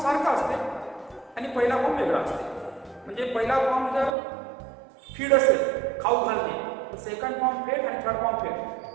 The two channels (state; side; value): drops out; left; at 4.2 s